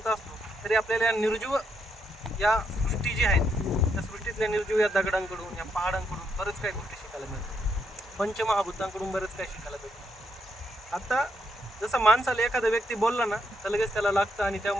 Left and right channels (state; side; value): normal; both; correlation 0.77